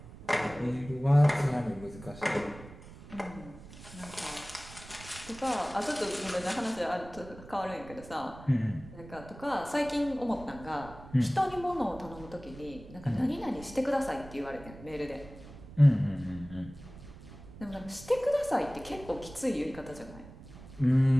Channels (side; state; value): right; noise; rumble, 17 dB below the sound